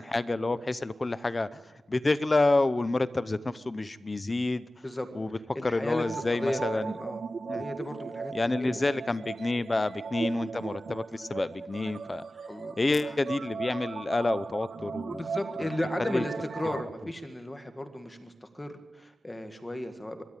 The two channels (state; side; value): normal; both; correlation 0.96